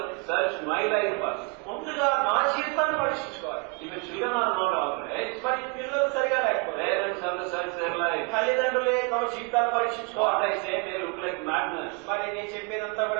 search my life first. ముందుగా నా జీవితాన్ని పరీక్షించుకోవాలి. If the children are not all right, మరి పిల్లలు సరిగా లేకపోతే parents have to search their life. తల్లిదండ్రులే తమ జీవితాన్ని What పరీక్షించుకోవాలి. I say may look like madness. మరి నేను చెప్పేదంతా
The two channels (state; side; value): quieter; left; 31.4 dB